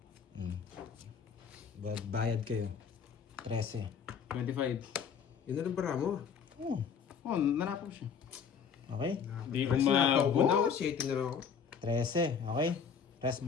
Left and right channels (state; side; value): quieter; right; 6.8 dB